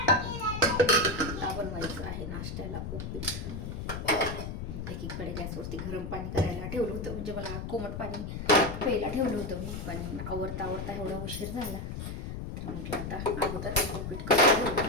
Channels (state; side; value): noise; left; rumble, 6 dB below the sound